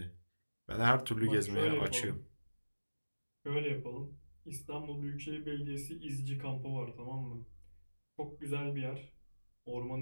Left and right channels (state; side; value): inverted; both; correlation -1.00